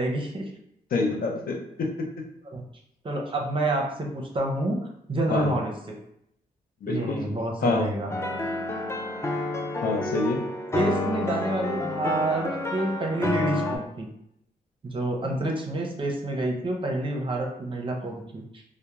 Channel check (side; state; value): both; normal; correlation 0.64